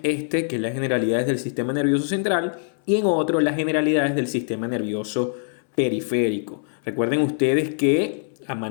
este, que es las generalidades del sistema nervioso central, y en otro las generalidades del sistema nervioso periférico. Recuerden ustedes que a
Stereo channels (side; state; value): right; silent; 63 dB below the other